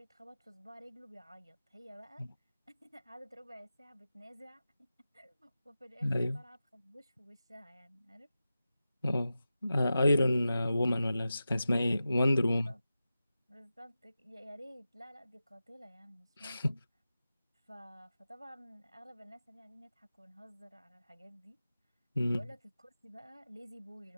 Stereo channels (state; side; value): inverted; both; correlation -0.92